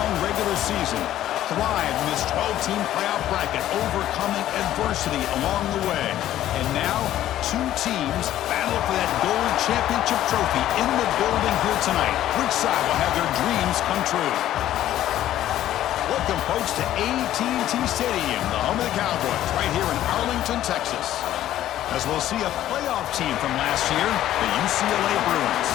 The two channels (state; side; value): quieter; right; 12.8 dB